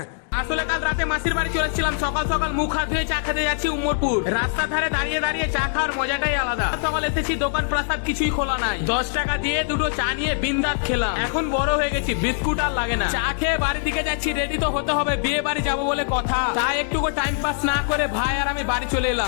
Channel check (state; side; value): silent; right; digital silence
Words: আসলে কাল রাতে মাসির বাড়ি চলেছিলাম, সকাল সকাল মুখ হাত ধুয়ে চা খেতে যাচ্ছি উম্মরপুর। রাস্তার ধারে দাঁড়িয়ে দাঁড়িয়ে চা খাওয়ার মজাটাই আলাদা। সকাল এসেছি, দোকান প্রাসাদ কিছুই খোলা নাই। 10 টাকা দিয়ে দুটো চা নিয়ে বিন্দাস খেলাম। এখন বড় হয়ে গেছি, বিস্কুট আর লাগে না। চা খেয়ে বাড়ির দিকে যাচ্ছি, রেডি তো হতে হবে, বিয়ে বাড়ি যাবো বলে কথা। তাই একটুকু টাইম পাস না করে ভাই আর আমি বাড়ি চলে